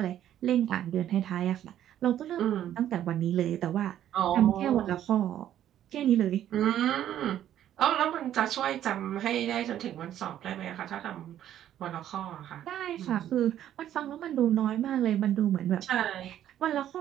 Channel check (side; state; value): left; quieter; 11.3 dB